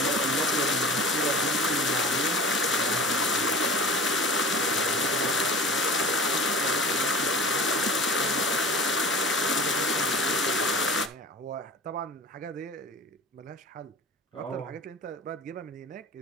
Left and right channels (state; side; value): normal; both; correlation 0.38